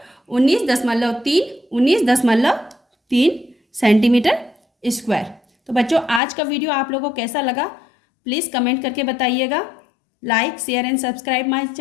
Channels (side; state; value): right; drops out; at 6.2 s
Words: 19.3 सेंटीमीटर स्क्वायर। तो बच्चों आज का वीडियो आप लोगों को कैसा लगा प्लीज़ कमेंट करके बताइएगा। Like share and subscribe my